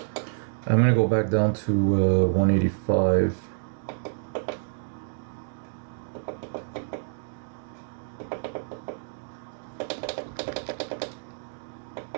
I'm gonna go back down to 185.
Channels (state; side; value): silent; left; digital silence